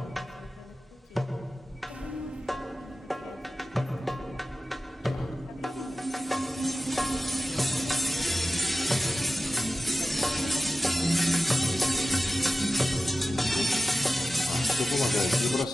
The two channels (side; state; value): both; normal; correlation 0.94